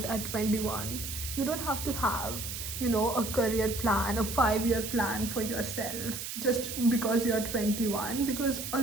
at 21. You don't have to have, a career plan, a 5-year plan for yourself just because you're 21. Because a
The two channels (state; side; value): noise; right; hiss, 6 dB below the sound